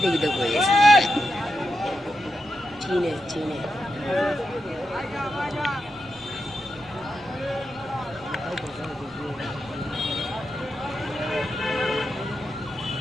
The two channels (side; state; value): both; normal; correlation 0.87